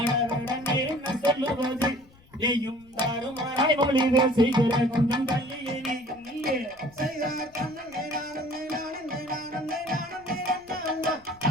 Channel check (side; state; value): left; noise; rumble, 29 dB below the sound